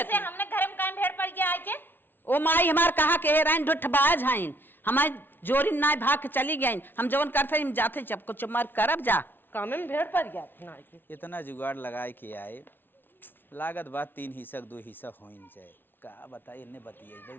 से हमने घर में काम भेड़ पड़ ओ माई हमार कहा के हेराइन ढुठबाज हईन, हमार जोरी नाय भाग के चली गईन। हम जवन करते हम जाते जब कुछ मार करब जा। कामे में भेड़ पड़ गया ना के। इतना जुगाड़ लगाए के आए, लागत बात 3 हिस्सा 2 हिस्सा होइन जाए। का बताइए इन्ने बतियाई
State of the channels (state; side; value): late; right; 0.099 ms